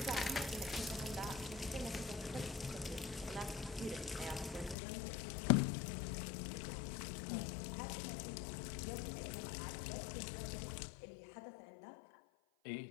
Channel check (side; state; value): right; drops out; at 4.8 s